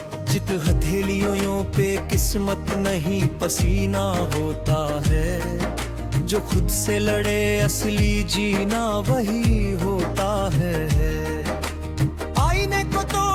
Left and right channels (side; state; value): both; identical; correlation 1.00